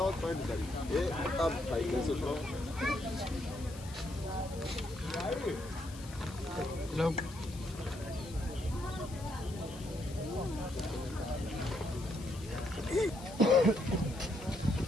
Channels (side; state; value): left; noise; hiss, 17 dB below the sound